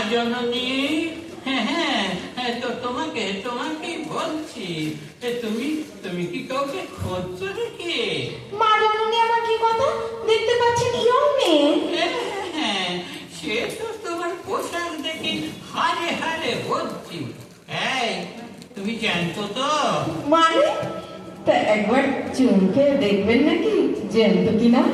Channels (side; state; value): both; identical; correlation 1.00